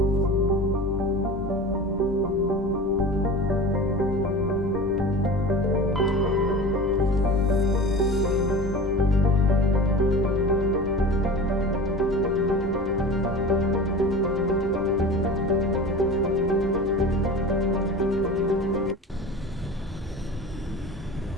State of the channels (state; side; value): normal; both; correlation 0.35